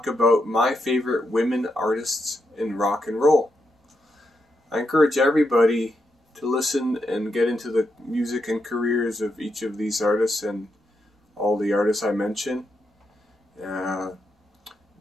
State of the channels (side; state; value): both; normal; correlation 0.83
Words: about my favorite women artists in rock and roll. I encourage everybody to listen and get into the music and careers of each of these artists and all the artists I mention.